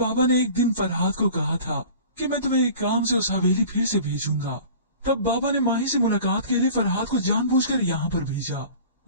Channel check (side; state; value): both; inverted; correlation -0.42